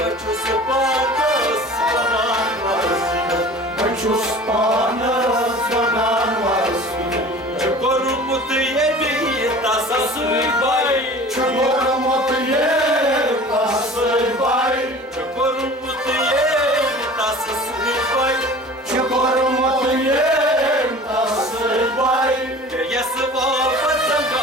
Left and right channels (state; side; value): normal; both; correlation 0.42